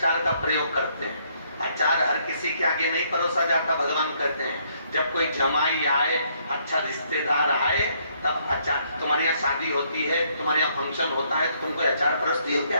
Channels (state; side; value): inverted; both; correlation -0.69